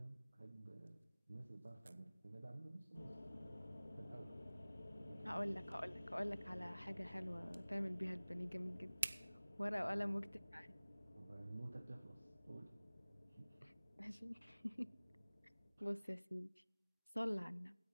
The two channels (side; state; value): both; inverted; correlation -0.99